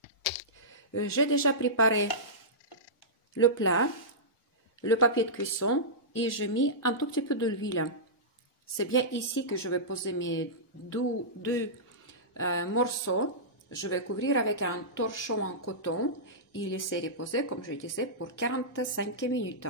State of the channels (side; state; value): both; normal; correlation -0.16